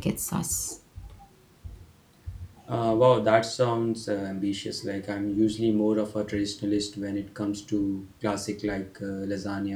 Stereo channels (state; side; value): identical; both; correlation 1.00